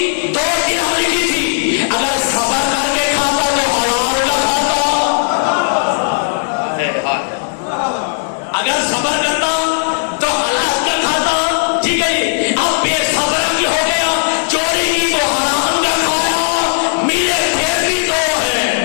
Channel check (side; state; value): right; silent; 70 dB below the other